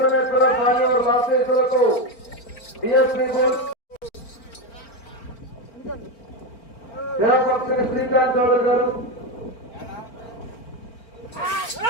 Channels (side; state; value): right; late; 4.4 ms